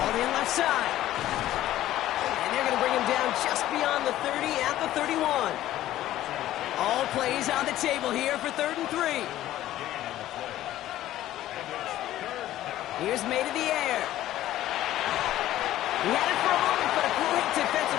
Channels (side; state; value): right; quieter; 13.9 dB